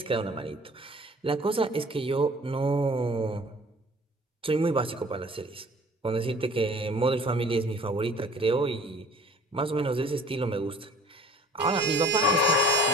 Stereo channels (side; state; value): both; normal; correlation 0.50